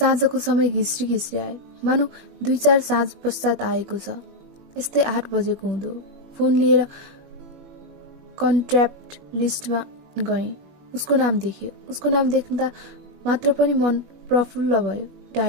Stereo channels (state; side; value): late; left; 21 ms